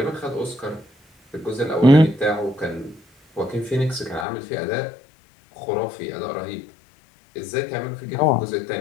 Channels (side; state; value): right; drops out; at 4.2 s